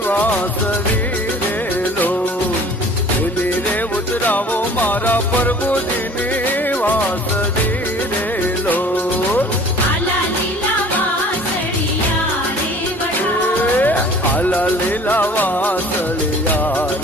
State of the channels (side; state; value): both; normal; correlation 0.49